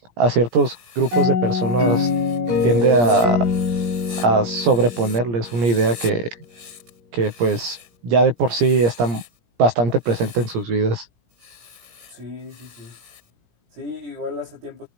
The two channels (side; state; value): left; late; 17 ms